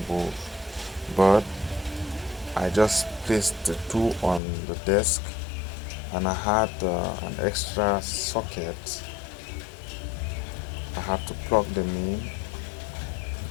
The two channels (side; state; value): right; drops out; at 4.4 s